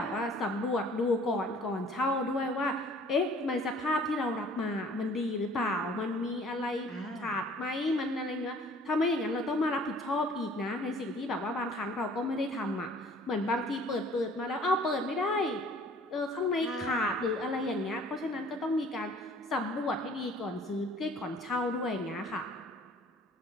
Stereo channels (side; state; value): both; normal; correlation 0.53